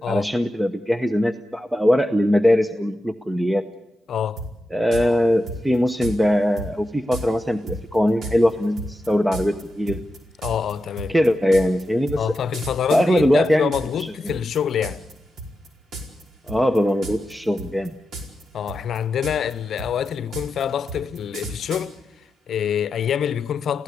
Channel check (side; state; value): both; normal; correlation 0.89